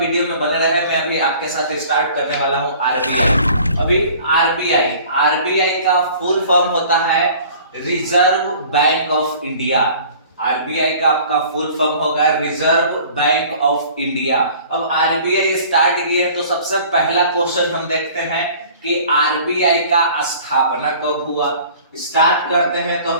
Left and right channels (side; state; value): both; inverted; correlation -0.48